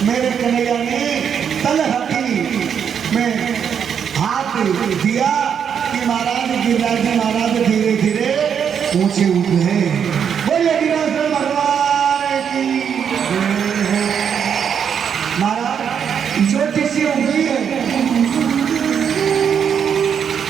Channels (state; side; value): quieter; left; 7.7 dB